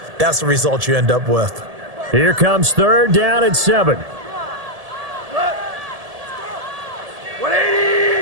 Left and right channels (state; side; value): late; left; 1.7 ms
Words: that's the result you end up with. Here comes third down and 7.